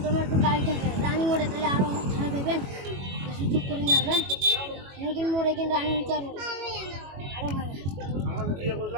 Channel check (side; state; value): left; late; 21 ms